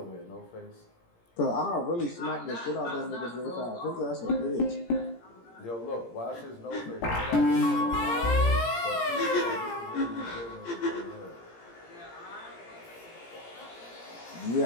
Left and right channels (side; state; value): right; late; 17 ms